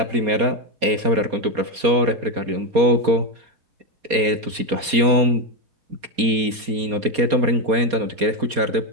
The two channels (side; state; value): left; late; 4.2 ms